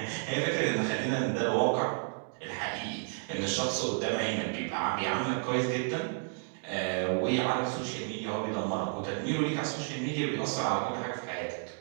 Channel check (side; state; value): left; silent; 57 dB below the other